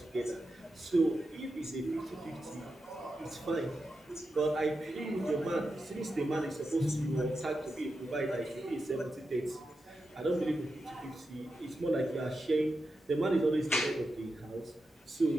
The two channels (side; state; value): both; normal; correlation 0.89